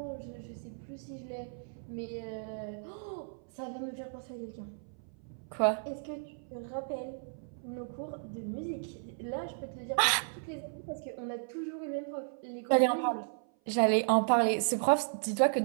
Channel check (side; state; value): left; silent; 55 dB below the other